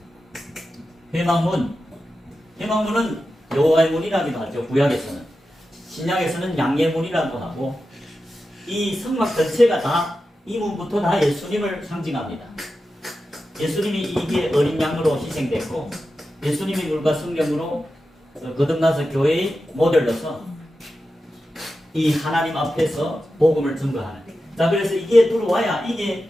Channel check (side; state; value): both; normal; correlation 0.91